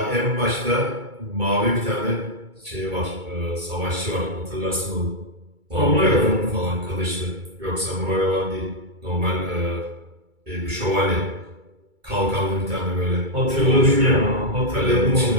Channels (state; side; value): late; left; 2.3 ms